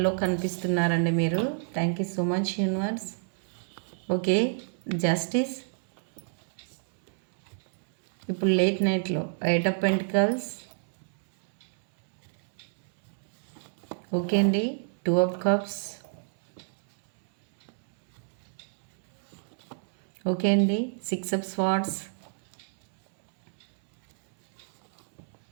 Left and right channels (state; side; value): silent; left; 59 dB below the other